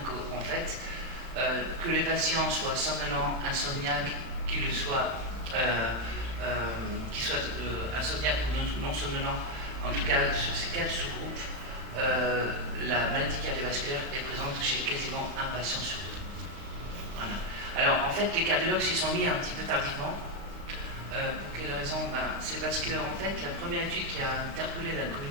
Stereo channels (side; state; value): left; late; 35 ms